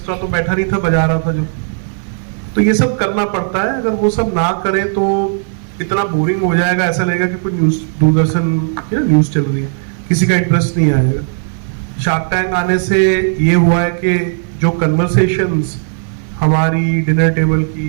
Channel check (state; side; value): silent; left; 66 dB below the other